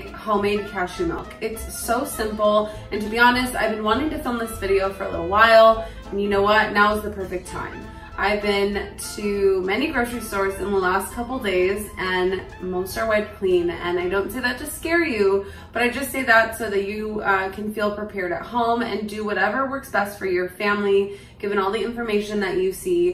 homemade cashew milk. It's so simple, and to be honest, I've been wanting to film this video for a little while, and you know what? Now is the perfect time. I've been to many grocery stores in the last couple days, and most are wiped clean, and I don't say that to scare you, but I just say that so that you can feel prepared at home and do whatever works best for your family, given all the information that you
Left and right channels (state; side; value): identical; both; correlation 1.00